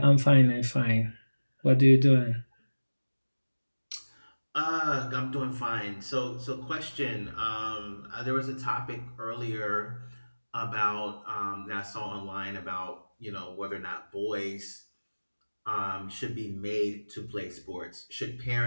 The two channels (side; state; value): both; inverted; correlation -1.00